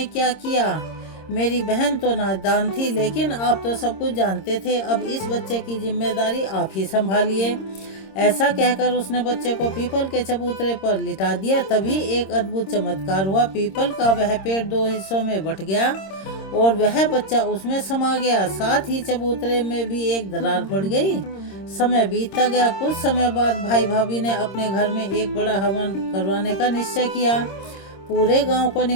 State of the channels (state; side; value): late; right; 26 ms